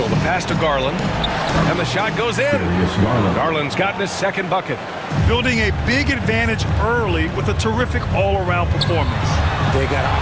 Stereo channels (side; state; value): both; identical; correlation 1.00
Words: the pass to Garland. And the shot goes in. Garland's gotten his second bucket. Building a big advantage early with a terrific all-around performance. They got